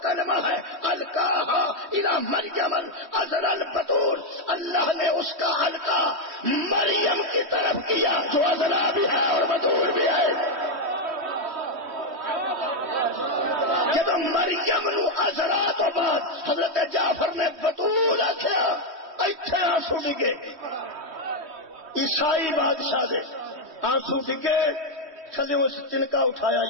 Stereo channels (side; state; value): left; late; 3.1 ms